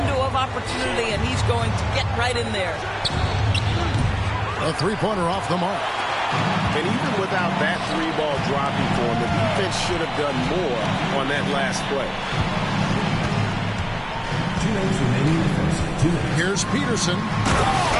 of opportunity, and he's going to get right in there. A three-pointer off the mark. And even without that 3-ball dropping for him, the defense should have done more on that last play. Here's Peterson.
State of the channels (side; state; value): both; identical; correlation 1.00